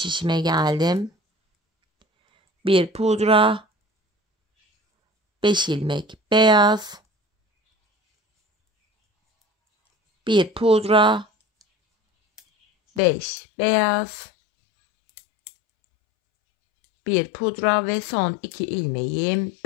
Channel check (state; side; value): drops out; right; at 13.0 s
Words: geldim. 1 pudra. 5 ilmek beyaz. 1 pudra. 5 beyaz. 1 pudra ve son 2 ilmeğim